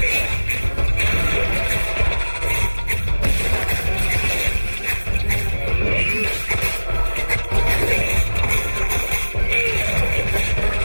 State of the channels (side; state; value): both; inverted; correlation -1.00